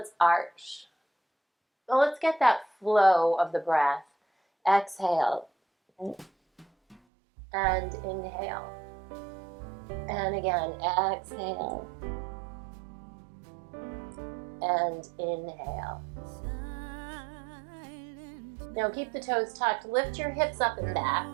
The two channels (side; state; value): left; drops out; at 7.0 s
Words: arch. Well, let's get that flow of the breath. Exhale. And inhale. And again, exhale. And inhale. Now keep the toes tucked. Lift your hips up and